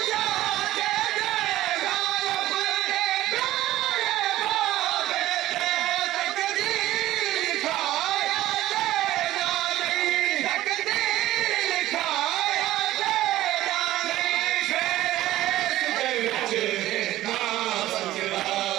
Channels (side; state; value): left; quieter; 15.1 dB